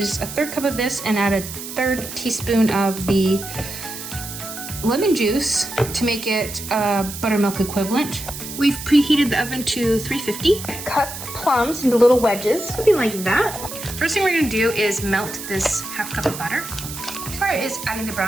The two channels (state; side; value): noise; right; hiss, 10 dB below the sound